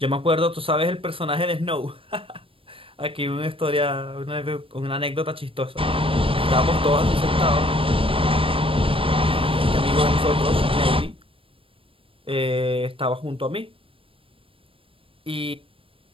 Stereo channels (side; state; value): left; late; 0.26 ms